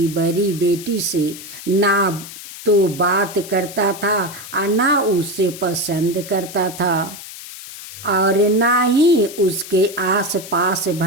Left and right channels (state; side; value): noise; left; hiss, 13 dB below the sound